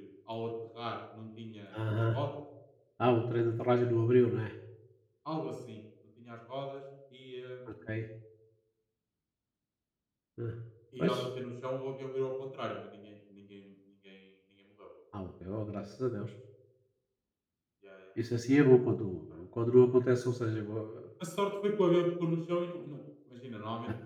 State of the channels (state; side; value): identical; both; correlation 1.00